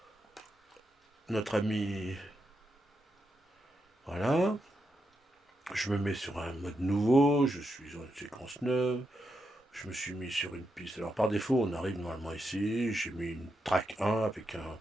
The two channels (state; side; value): normal; both; correlation 0.85